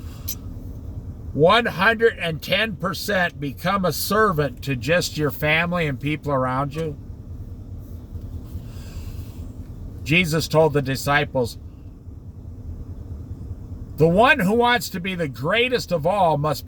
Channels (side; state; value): both; identical; correlation 1.00